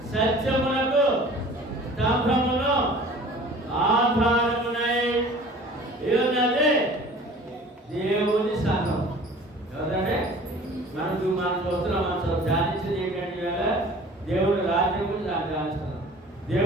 సత్యమునకు స్తంభమును ఆధారమునై ఉన్నది దేవుని సంఘం. ఎవరంటే మనం చూస్తున్నాం, మనం ధ్యానించేది ఏంటంటే దేవుని రాజ్యం గురించి ధ్యానిస్తున్నాం.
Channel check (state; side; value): normal; both; correlation 0.46